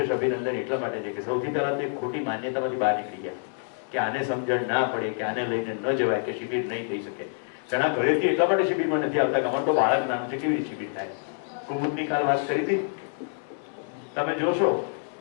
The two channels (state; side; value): silent; right; 60 dB below the other